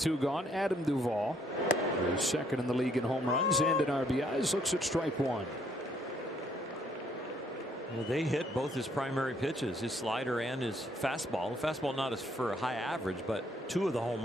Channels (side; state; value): both; normal; correlation 0.68